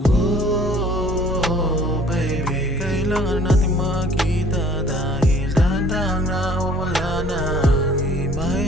Oh, baby, kailangan natin magkita dahil dahan-dahang nawawala na ang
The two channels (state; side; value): normal; both; correlation 0.54